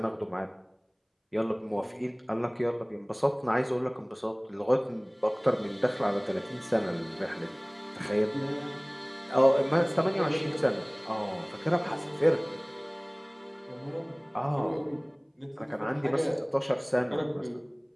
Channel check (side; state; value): both; identical; correlation 1.00